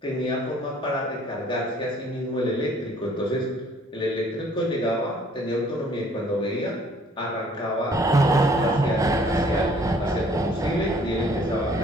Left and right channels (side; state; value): both; normal; correlation 0.58